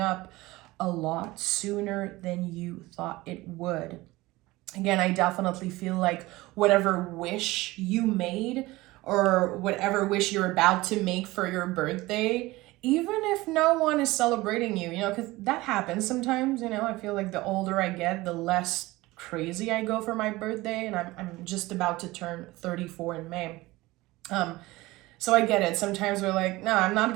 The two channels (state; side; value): quieter; left; 19.8 dB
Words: up a lot sooner than you thought it would. Again, I definitely feel like whatever wish you made or whatever wish you're about to make for your birthday, even if no one is celebrating you, you know, because that happens sometimes, you know. I feel like the older I get, the less crazy I go for my birthday, and I'm just about to turn 34 in May. So I get it. Sometimes we're like, no, I'm not